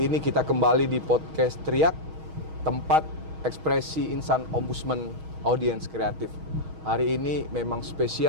ini kita kembali di podcast Teriak, tempat ekspresi insan Ombudsman audiens kreatif. Hari ini memang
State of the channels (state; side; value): late; left; 6.3 ms